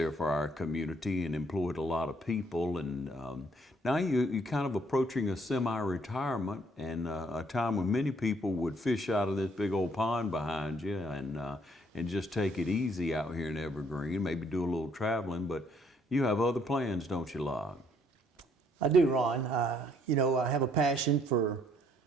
for our community and employed a lot of people. And now you're kind of approaching a semi-retirement and a time when many people would fish out of this big old pond behind you and just take it easy out here in Evergreen, maybe do a little traveling. But you have other plans, don't you, Locke? I do, Ron. I have a passion for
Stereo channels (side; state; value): both; normal; correlation 0.66